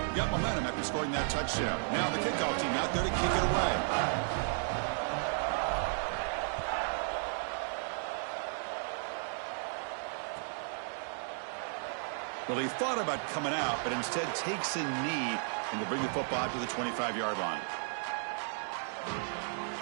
Got momentum after scoring that touchdown. Now the kickoff team out there to kick it away. Well, he thought about coming out, but instead takes a knee and to bring the football to the 25-yard line.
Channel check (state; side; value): silent; left; 55 dB below the other